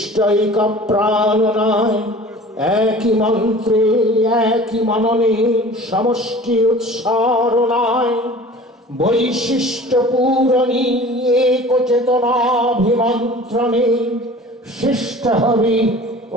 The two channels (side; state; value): both; normal; correlation 0.43